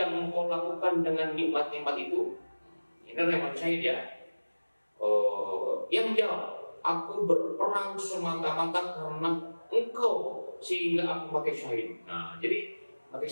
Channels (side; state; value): both; inverted; correlation -1.00